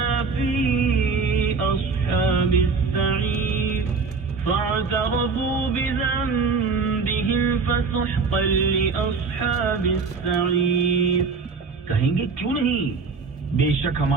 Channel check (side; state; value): left; quieter; 4.8 dB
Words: في أصحاب السعير فاعترفوا بذنبهم فسحقا لأصحاب السعير۔ کہیں گے کیوں نہیں، بے شک